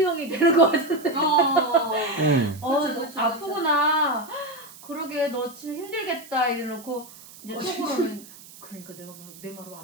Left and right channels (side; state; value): right; noise; hiss, 19 dB below the sound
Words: 되는 거 같은데. 그렇죠. 아프구나. 그러게 너 진짜 힘들겠다 이래놓고 이제 속으로는 그러니까 내가 내 말을